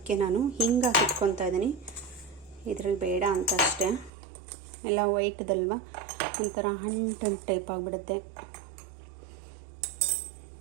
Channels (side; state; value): left; drops out; at 4.1 s